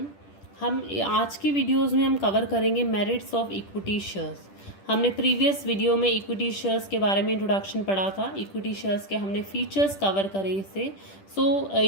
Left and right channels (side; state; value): right; late; 10 ms